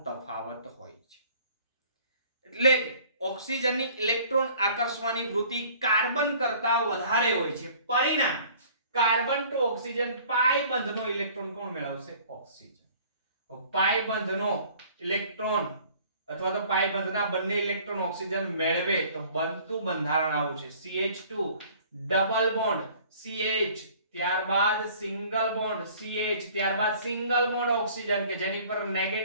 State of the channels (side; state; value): both; inverted; correlation -0.52